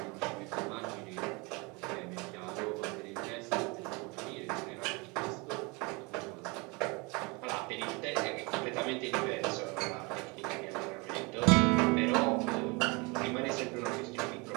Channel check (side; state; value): left; quieter; 28.0 dB